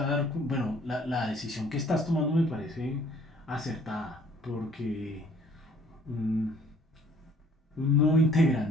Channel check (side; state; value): both; normal; correlation 0.58